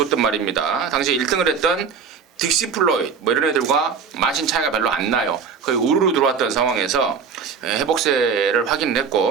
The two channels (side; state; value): left; quieter; 6.3 dB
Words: 말입니다. 당시 1등을 했던 딕시 플로이드 이런 애들과 마신 차이가 별로 안 나요. 거의 우르르 들어왔던 상황에서 회복세를